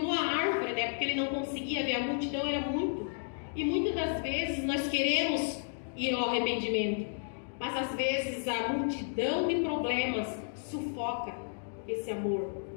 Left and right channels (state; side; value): silent; right; digital silence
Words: árvore, né, porque ele não conseguia ver, a multidão era muito, e muitas das vezes nós queremos ir ao arrependimento, mas às vezes a multidão de problemas sufoca esse amor.